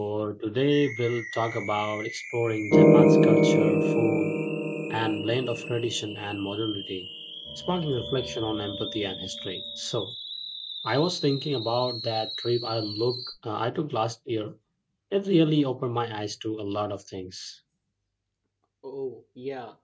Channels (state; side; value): identical; both; correlation 1.00